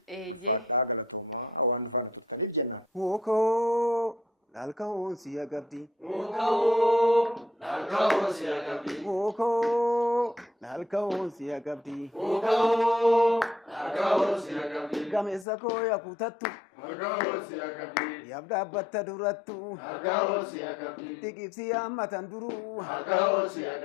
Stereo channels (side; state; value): right; drops out; at 15.5 s